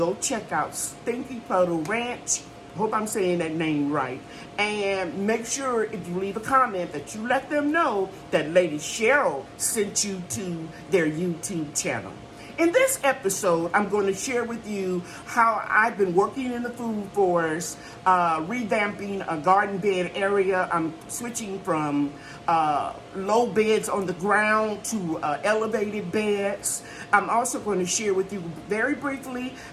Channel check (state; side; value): identical; both; correlation 1.00